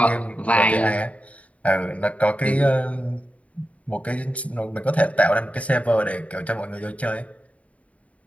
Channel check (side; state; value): right; late; 0.066 ms